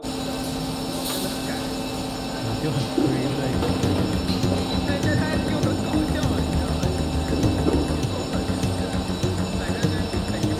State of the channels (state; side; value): identical; both; correlation 1.00